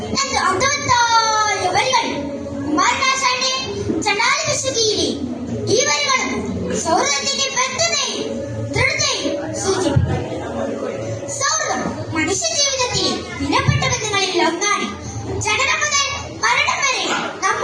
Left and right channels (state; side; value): identical; both; correlation 1.00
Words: എന്ന് അർത്ഥവത്തായ വരികൾ കുമാരനാശാന്റെ ചണ്ടാലവിശുദ്ധിയിലെ ഈ വരികളും സൗഹൃദത്തിന്റെ ബന്ധത്തെയും ദൃഢതയും സൂചിപ്പിക്കുന്നു. സൗഹൃദം മനുഷ്യ ജീവിതത്തിലെ വിലപ്പെട്ട ബന്ധങ്ങളിൽ ഒന്നാണ്. ജനനം മുതൽ മരണം വരെ